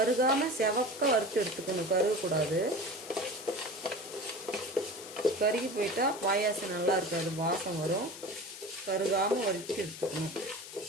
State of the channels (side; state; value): left; noise; hiss, 13 dB below the sound